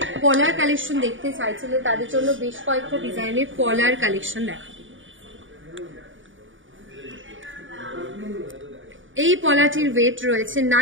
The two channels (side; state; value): left; late; 0.57 ms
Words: পলার কালেকশন দেখতে চাইছিলেন তাদের জন্য বেশ কয়েকটা ডিজাইনের পলার কালেকশন দেখাবো। এই পলাটির ওয়েট রয়েছে